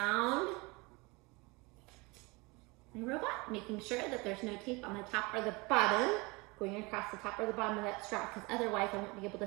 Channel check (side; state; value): left; quieter; 26.0 dB